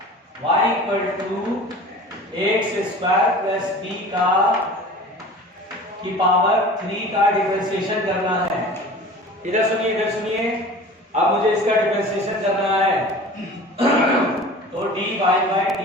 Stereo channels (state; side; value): normal; both; correlation 0.40